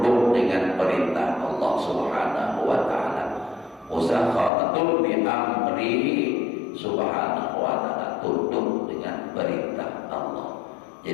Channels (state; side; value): drops out; right; at 4.5 s